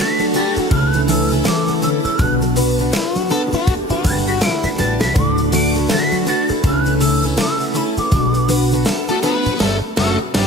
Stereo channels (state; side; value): normal; both; correlation 0.52